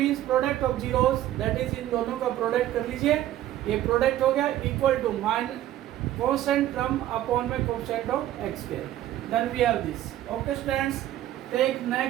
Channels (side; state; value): left; quieter; 13.2 dB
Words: product of zeros, that is इन दोनों का प्रोडक्ट कर लीजिए, ये प्रोडक्ट हो गया, equal to minus constant term upon में coefficient of x square, then we have this. Okay students, take